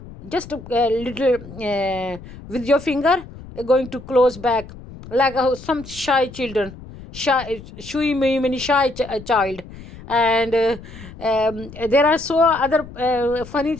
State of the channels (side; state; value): left; noise; rumble, 16 dB below the sound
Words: just a little with your finger, going to close back, like some shy children, shui many shy child. And there are so other funny